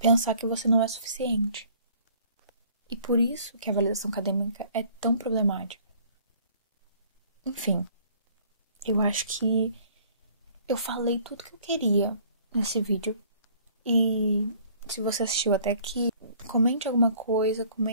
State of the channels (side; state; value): both; inverted; correlation -0.56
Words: que você não é suficiente. E por isso que a validação acadêmica é tão problemática. Enfim, eu acho que eu falei tudo que eu queria nesse vídeo. E se você assistiu até aqui, comente alguma coisa,